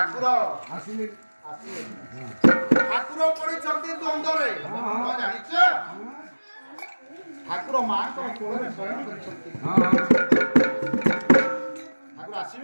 ଆସିଲେ। ଠାକୁର ପଡ଼ିଛନ୍ତି ଦ୍ୱନ୍ଦ୍ୱରେ। ଜାଣିଛ ଠାକୁର ମାଙ୍କର କୋଳରେ ଶୟନ କରିଛନ୍ତି। ଠାକୁର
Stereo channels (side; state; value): both; inverted; correlation -1.00